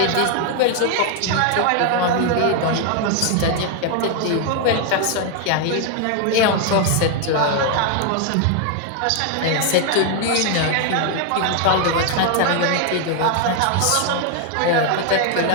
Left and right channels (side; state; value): both; different; correlation 0.00